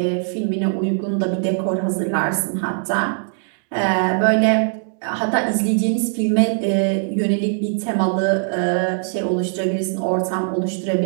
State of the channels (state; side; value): silent; left; digital silence